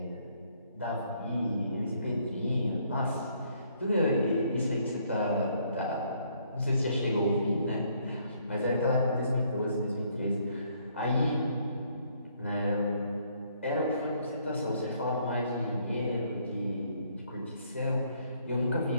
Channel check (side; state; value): both; inverted; correlation -0.67